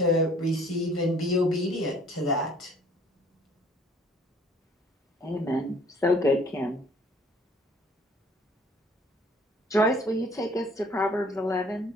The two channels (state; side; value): normal; both; correlation 0.56